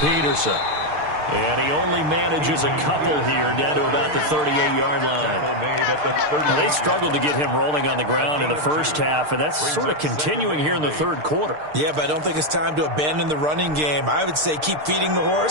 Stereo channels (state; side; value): late; left; 6.6 ms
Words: Peterson. And he only manages a couple here down to about the 38-yard line. Now, they struggled to get him rolling on the ground in the first half, and that's sort of continuing here in the 3rd quarter. Yeah, but I don't think it's time to abandon the running game. I would say keep feeding the